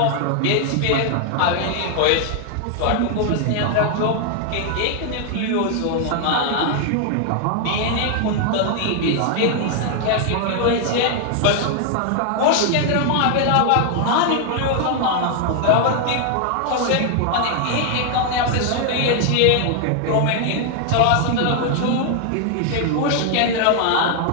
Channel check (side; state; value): both; different; correlation 0.00